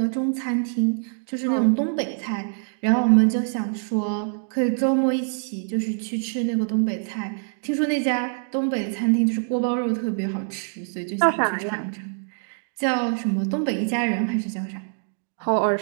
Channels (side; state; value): left; silent; digital silence